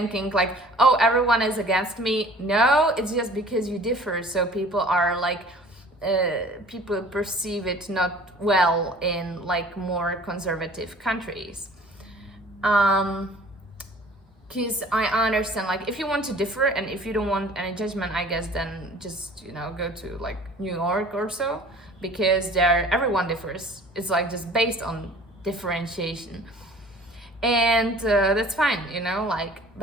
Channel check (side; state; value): both; normal; correlation 0.49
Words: like, oh, everyone is against me. No, it's just because you differ. So people are like, people perceive it not well in like more conservative countries. Because I understand, like, if you want to differ and if you don't want any judgment, I guess, then just, go to like New York or so, because there everyone differs. It's like just based on differentiation. And that's fine,